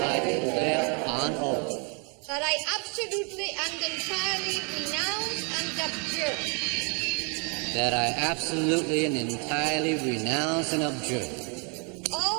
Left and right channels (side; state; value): left; quieter; 35.4 dB